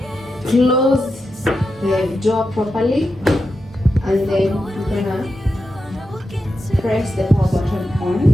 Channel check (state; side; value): normal; both; correlation 0.88